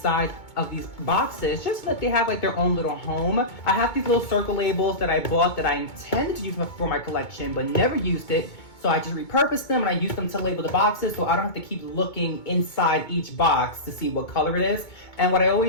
of these boxes just so that they have like their own little home. I have these little circle labels that I bought that I intended to use for my collection but never used it, so I just repurposed them and I use them to label the boxes so I don't have to keep looking inside each box to see what color it is. And what I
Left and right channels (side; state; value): right; late; 2.2 ms